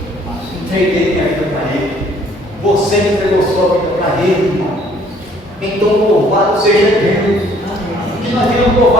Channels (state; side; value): normal; both; correlation 0.60